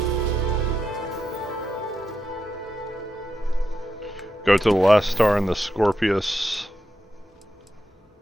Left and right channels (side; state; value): both; normal; correlation 0.86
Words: Go to the last star in the Scorpius